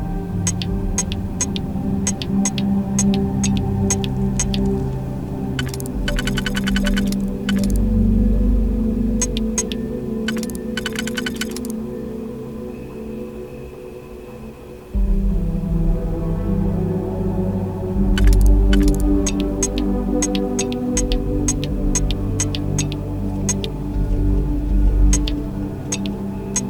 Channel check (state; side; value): identical; both; correlation 1.00